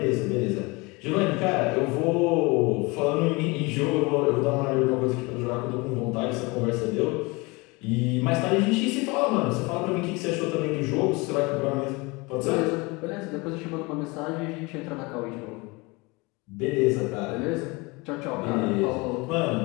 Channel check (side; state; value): right; quieter; 25.8 dB